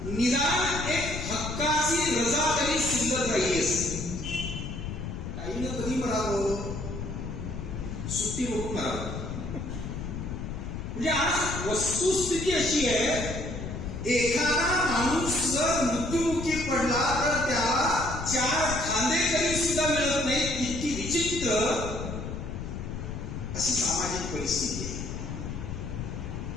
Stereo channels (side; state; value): left; noise; rumble, 6 dB below the sound